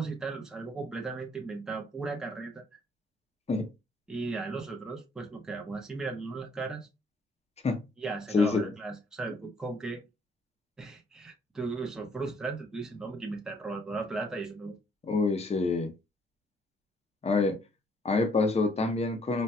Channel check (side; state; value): both; normal; correlation 0.66